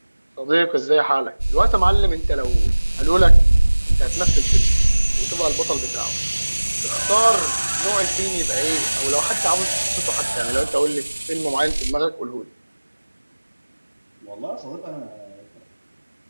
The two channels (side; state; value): both; inverted; correlation -1.00